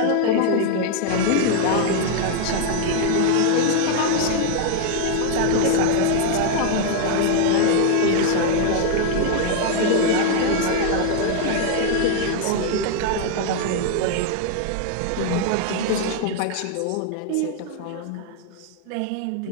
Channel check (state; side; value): different; both; correlation 0.00